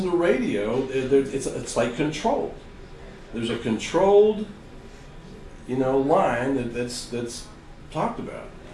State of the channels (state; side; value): identical; both; correlation 1.00